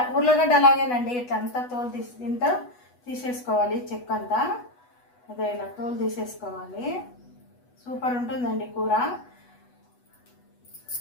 ఉర్లగడ్డ అలాగేనండి. ఇట్లా అంతా తోలు ఇంత తీసేసుకోవాలి. చెక్క అంతా అదే ఇలా తోలు తీసేసుకోవాలి. సూపర్ ఉంటుందండి కూర.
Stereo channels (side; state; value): right; late; 8.1 ms